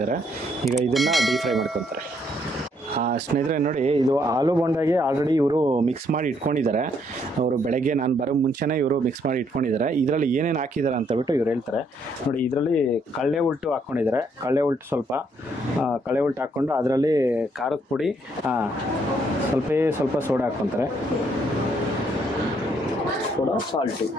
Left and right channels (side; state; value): both; normal; correlation 0.70